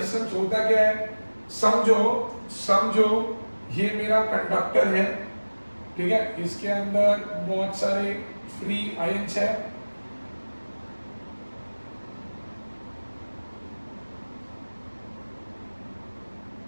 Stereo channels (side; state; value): both; inverted; correlation -1.00